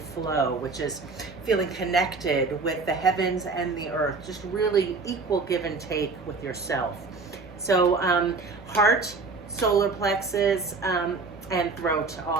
flow, which is feeling connected with the heavens and the earth, just really equal give and take with yourself. So heart, solar plexus, and throat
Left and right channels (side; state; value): left; quieter; 4.1 dB